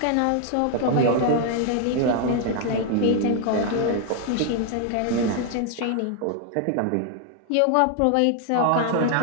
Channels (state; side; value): different; both; correlation 0.00